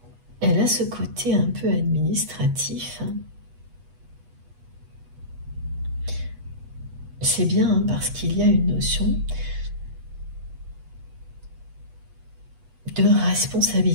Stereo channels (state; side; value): late; left; 8.2 ms